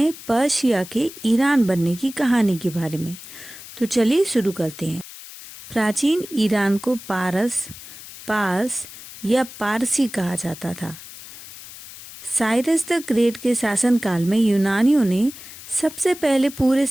पर्शिया के ईरान बनने की कहानी के बारे में। तो चलिए शुरू करते हैं। प्राचीन ईरान को पार्स या पारसी कहा जाता था। साइरस द ग्रेट के शासनकाल में यूनानियों ने सबसे पहले पूरे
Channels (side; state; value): left; noise; hiss, 15 dB below the sound